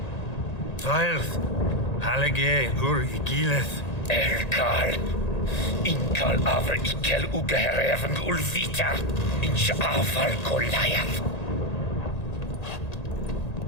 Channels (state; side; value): late; right; 1.9 ms